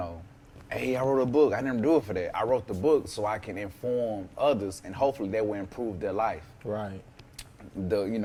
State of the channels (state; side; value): identical; both; correlation 1.00